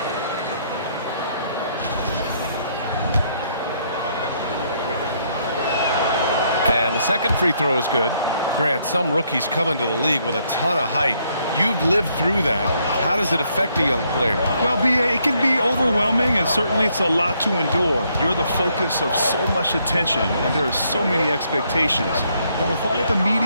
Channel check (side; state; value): both; inverted; correlation -0.71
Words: And the second free throw is good. Grant, some rookies come into the league with a ton of height. You've lived through that. How does it affect a young player? Well, it can be overwhelming, and certainly it's a lot to endure. You're the focus of so much attention, and there are so many expectations. And with all the